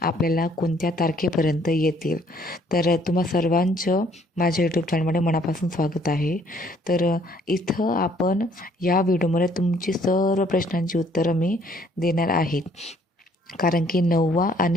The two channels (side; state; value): both; normal; correlation 0.62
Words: आपल्याला कोणत्या तारखेपर्यंत येतील. तर तुम्हा सर्वांचं माझ्या यूट्यूब चॅनलमध्ये मनापासून स्वागत आहे. तर इथं आपण या व्हिडिओमध्ये तुमची सर्व प्रश्नांची उत्तरं मी देणार आहे. कारण की